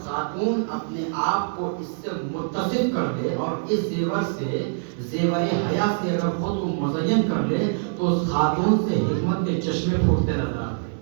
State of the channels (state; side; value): silent; left; 62 dB below the other